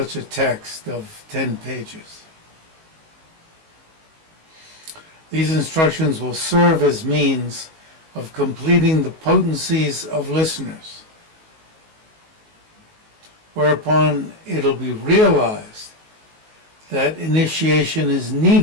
a text of 10 pages. These instructions will serve as means of completing the potencies of listeners, whereupon it'll be realized that initiation is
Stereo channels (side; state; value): left; late; 19 ms